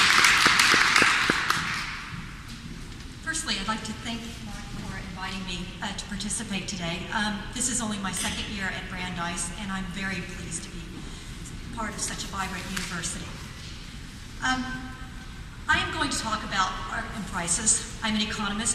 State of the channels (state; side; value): identical; both; correlation 1.00